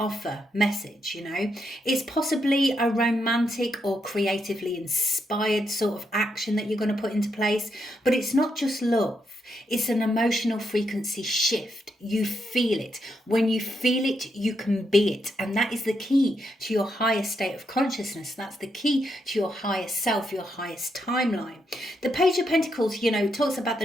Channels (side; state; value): both; normal; correlation 0.80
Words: message, you know. It's possibly a romantic or creatively inspired sort of action that you're going to put into place, but it's not just love. It's an emotional frequency shift. You feel it. When you feel it, you can be it. And that is the key to your highest state of consciousness. That's the key to your highest self, your highest timeline. The Page of Pentacles, you know, talks about